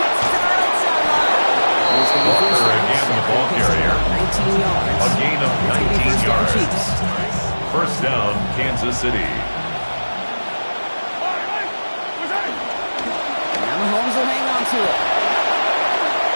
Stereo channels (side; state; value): both; inverted; correlation -1.00